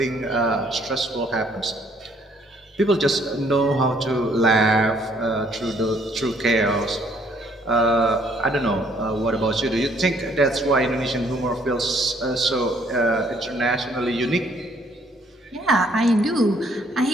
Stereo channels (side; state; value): both; normal; correlation 0.65